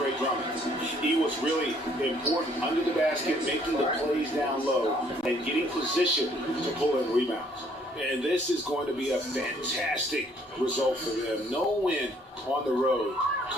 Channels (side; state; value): both; normal; correlation 0.63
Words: Drummond. He was really important under the basket, making the plays down low and getting position to pull in rebounds. And this is going to be a fantastic result for them. No win on the road